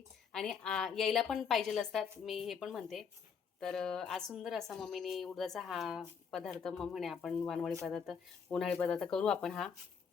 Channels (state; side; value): quieter; right; 6.6 dB